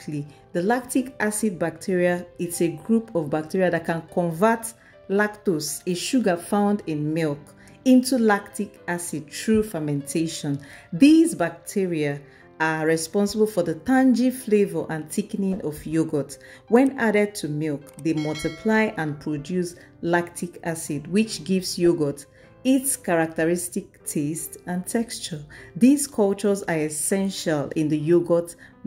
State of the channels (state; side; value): identical; both; correlation 1.00